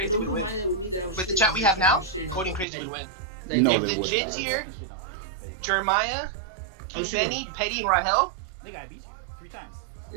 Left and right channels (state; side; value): drops out; left; at 2.7 s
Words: would win. With the chat we have now, Coding Crazy would win. No, if they the would Jits not. here, Jeremiah, King Benny, Petty, and Rahel. Nigga, I beat you 3 times.